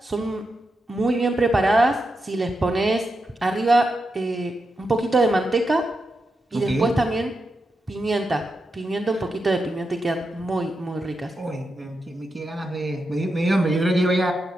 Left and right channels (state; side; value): normal; both; correlation 0.87